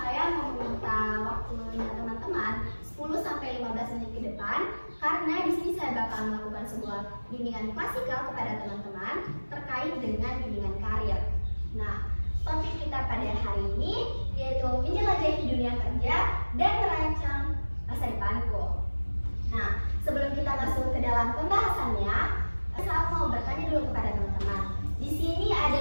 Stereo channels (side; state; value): both; inverted; correlation -1.00